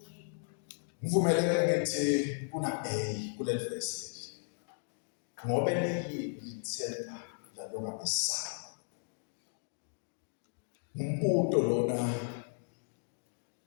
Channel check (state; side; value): silent; right; digital silence